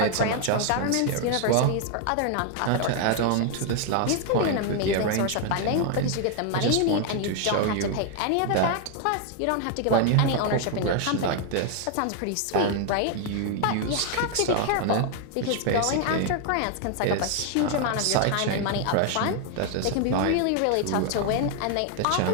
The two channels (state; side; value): different; both; correlation 0.00